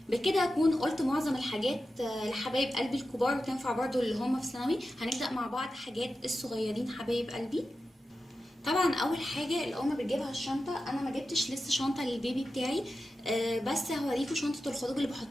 بكده اكون قلت معظم الحاجات لحبايب قلبي الكبار، وتنفع برضو اللي هم في ثانوي. هنبدا مع بعض حاجات الصغيرين حبايب قلبي. طبعا اول حاجه الام بتجيبها الشنطه، انا ما جبتش لسه شنطه للبيبي بتاعي، بس هوريكم شنطه الخروج اللي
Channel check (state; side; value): normal; both; correlation 0.92